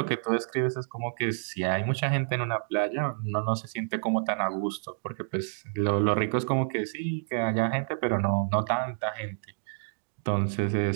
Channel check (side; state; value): left; silent; digital silence